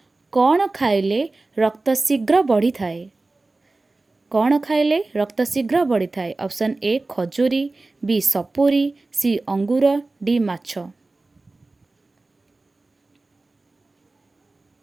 कौन खाइले रक्त शीघ्र बढ़ी थाए? कौन खाइले रक्त शीघ्र बढ़ी थाए? ऑप्शन ए खजूरी, बी सपुरी, सी अंगूर, डी माछ।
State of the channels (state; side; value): quieter; left; 3.3 dB